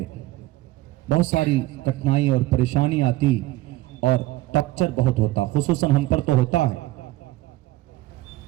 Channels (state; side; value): quieter; left; 17.5 dB